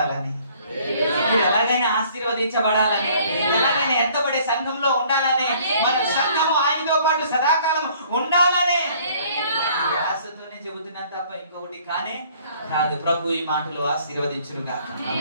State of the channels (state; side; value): inverted; both; correlation -0.58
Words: మీరు ఎలాగైనా ఆశీర్వదించబడాలని, ఎలాగైనా ఎత్తబడే సంఘంలో ఉండాలని, మన సంఘము ఆయనతో పాటు సదాకాలం ఉండాలని ఆశతోనే చెబుతున్నాను తప్ప ఇంకొకటి కానే కాదు. ప్రభు ఈ మాటలు ఆశీర్వదించును గాక.